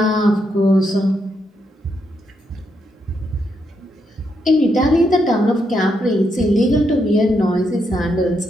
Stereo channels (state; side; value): normal; both; correlation 0.80